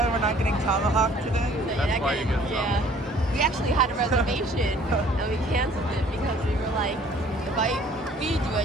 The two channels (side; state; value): both; normal; correlation 0.56